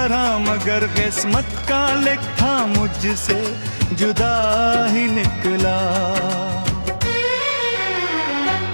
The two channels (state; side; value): inverted; both; correlation -1.00